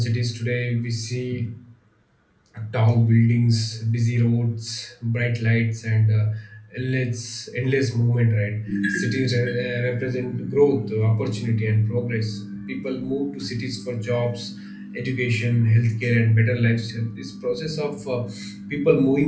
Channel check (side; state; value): both; identical; correlation 1.00